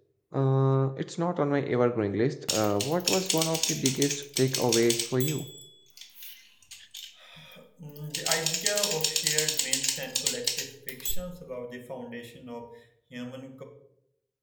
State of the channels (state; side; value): identical; both; correlation 1.00